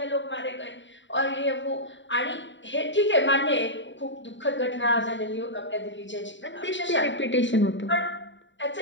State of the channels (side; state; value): right; late; 0.54 ms